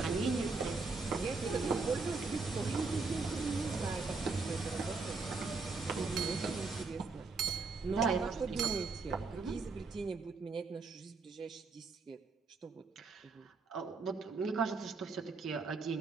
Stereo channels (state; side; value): quieter; left; 4.2 dB